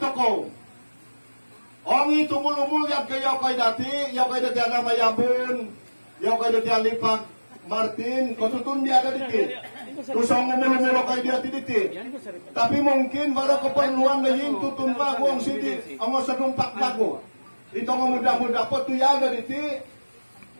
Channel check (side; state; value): both; inverted; correlation -1.00